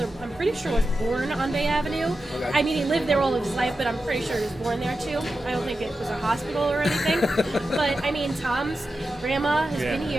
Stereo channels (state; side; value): normal; both; correlation 0.91